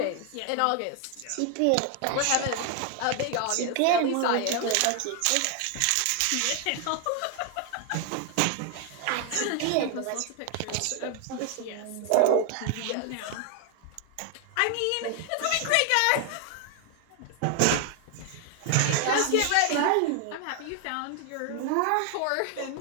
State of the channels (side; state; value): both; different; correlation 0.00